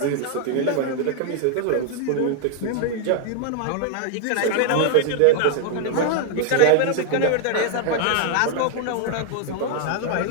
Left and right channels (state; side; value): different; both; correlation 0.00